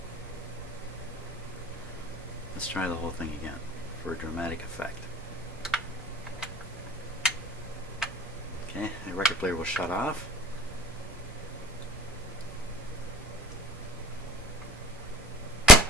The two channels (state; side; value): normal; both; correlation 0.46